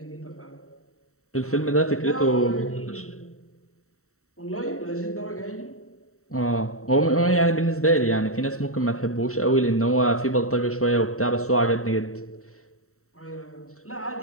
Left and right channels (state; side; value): late; right; 0.64 ms